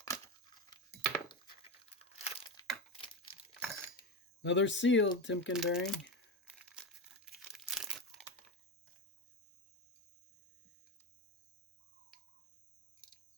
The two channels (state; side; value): normal; both; correlation 0.18